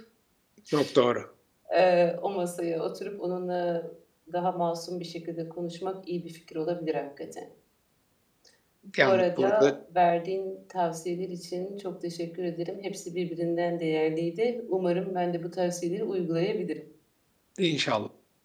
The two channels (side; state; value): both; identical; correlation 1.00